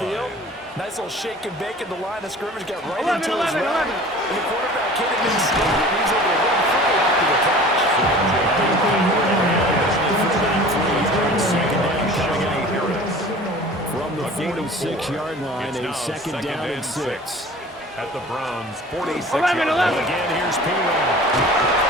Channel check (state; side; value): normal; both; correlation 0.43